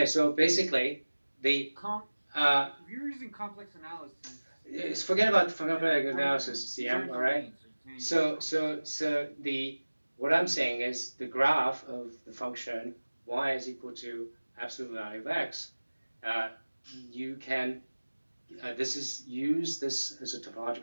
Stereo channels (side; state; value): both; inverted; correlation -1.00